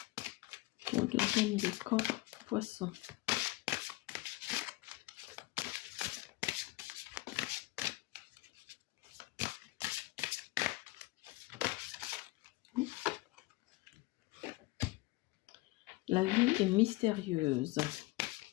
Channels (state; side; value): quieter; right; 21.1 dB